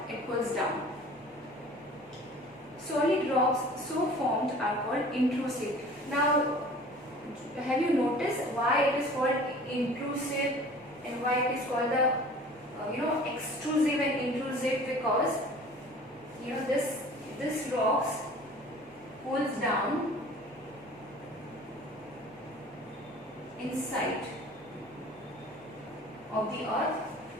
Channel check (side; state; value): both; normal; correlation 0.46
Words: it cools down. Solid rocks so formed are called intrusive. Now, have you noticed why it is called intrusive and why it is called the extrusive and intrusive? Because this rocks cools down inside of the earth,